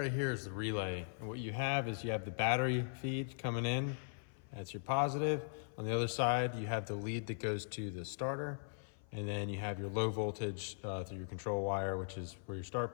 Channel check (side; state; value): right; silent; 51 dB below the other